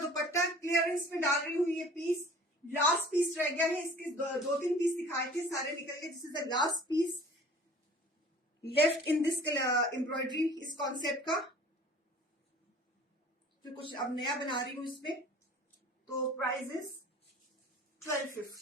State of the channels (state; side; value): normal; both; correlation 0.47